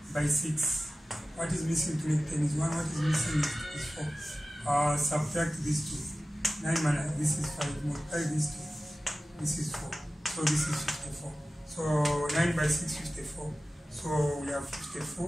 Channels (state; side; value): normal; both; correlation 0.96